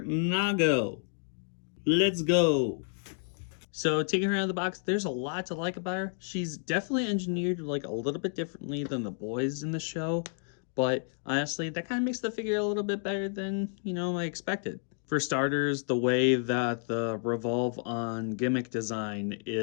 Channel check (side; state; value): right; silent; 57 dB below the other